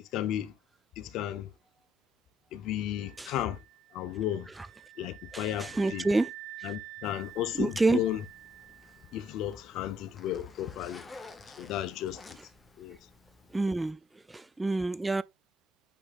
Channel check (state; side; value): normal; both; correlation 0.69